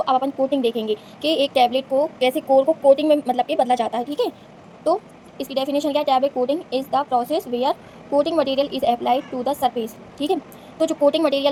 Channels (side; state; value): both; identical; correlation 1.00